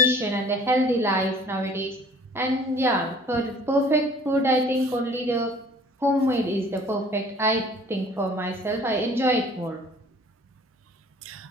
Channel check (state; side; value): normal; both; correlation 0.51